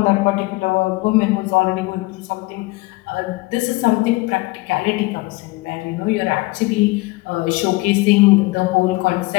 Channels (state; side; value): quieter; right; 22.4 dB